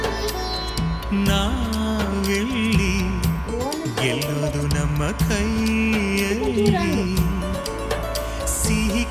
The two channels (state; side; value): identical; both; correlation 1.00